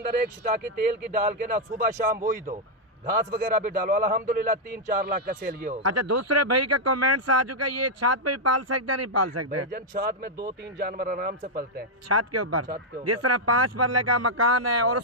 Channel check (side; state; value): both; normal; correlation -0.03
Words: एक शिटाकी तेल की डाल के ना सुबह शाम वही दो, घास वगैरह भी डालो। अल्हम्दुलिल्लाह 3-4 लाख का सेल ये हो। अच्छा दूसरे भाई का कमेंट्स आ चुका है, ये छत पे भी पाल सकते हैं नहीं पाल सकते? भाईजान छत में 2-3 जानवर आराम से पलते हैं। छत के ऊपर? छत के ऊपर। जिस तरह 5 मरले का मकान है और